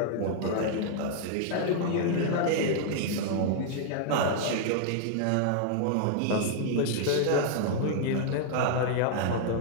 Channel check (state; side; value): different; both; correlation -0.01